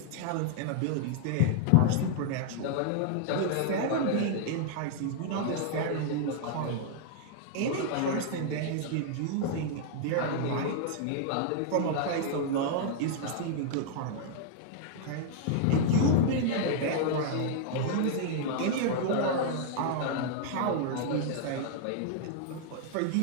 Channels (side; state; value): both; different; correlation 0.00